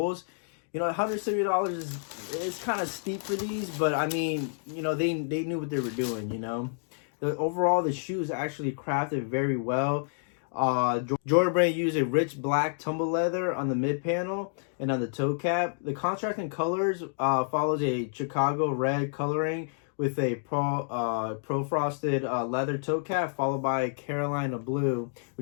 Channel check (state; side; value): silent; right; digital silence